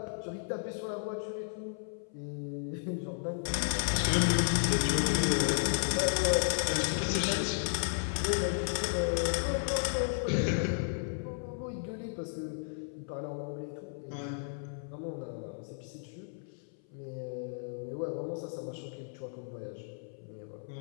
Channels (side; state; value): right; silent; 55 dB below the other